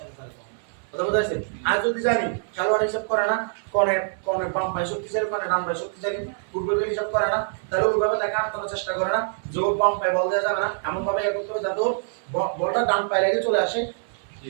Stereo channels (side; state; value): left; silent; 62 dB below the other